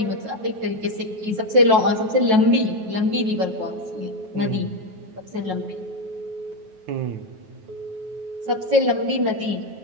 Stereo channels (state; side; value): late; left; 9.2 ms